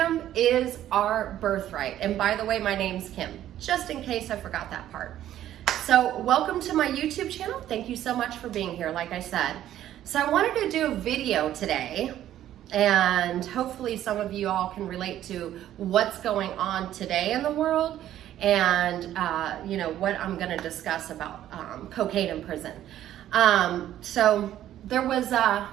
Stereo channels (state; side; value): quieter; left; 12.2 dB